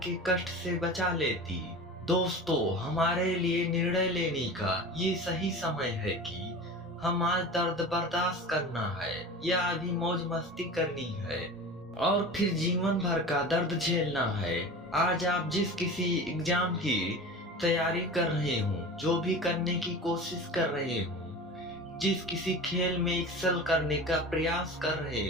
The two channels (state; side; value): normal; both; correlation 0.34